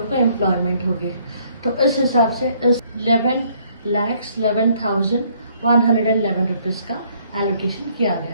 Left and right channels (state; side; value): inverted; both; correlation -0.64